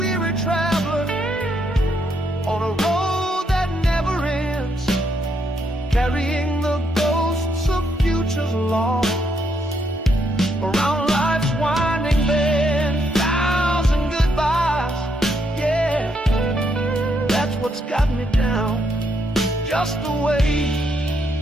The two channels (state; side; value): normal; both; correlation 0.76